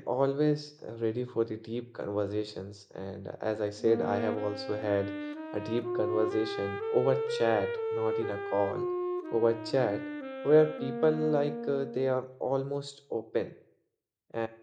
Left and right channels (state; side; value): identical; both; correlation 1.00